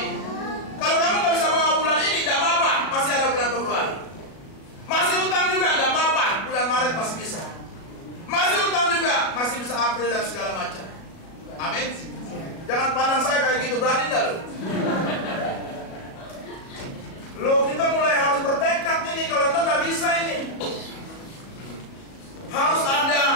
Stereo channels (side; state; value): right; late; 37 ms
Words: Kalau kamu nggak bisa bawa bulan ini, tidak apa-apa, masih ada bulan Februari. Masih utang juga, tidak apa-apa, bulan Maret masih bisa. Masih utang juga, masih bisa April dan segala macam. Amin. Jangan pandang saya kayak gitu, berani enggak lu? Loh, kita mulai harus bertekad ini, kalau enggak nggak bisa ini. Harus ada